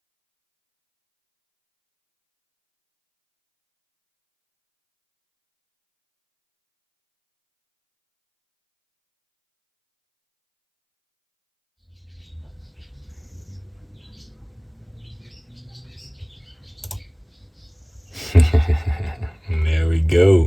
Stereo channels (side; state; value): both; identical; correlation 1.00